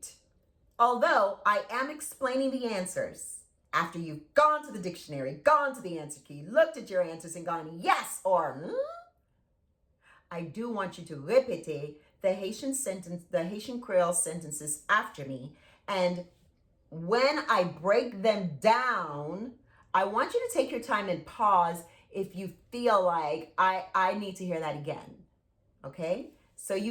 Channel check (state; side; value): identical; both; correlation 1.00